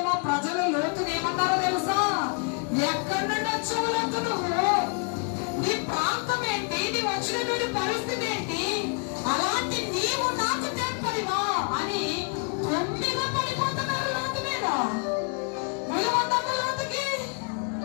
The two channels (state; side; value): quieter; right; 38.4 dB